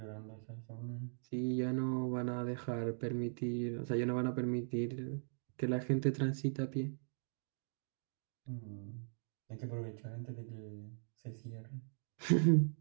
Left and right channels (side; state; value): left; silent; digital silence